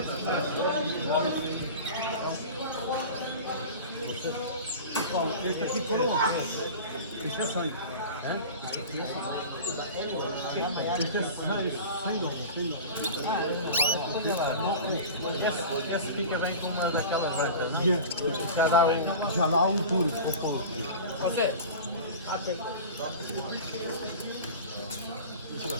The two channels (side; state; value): both; inverted; correlation -0.34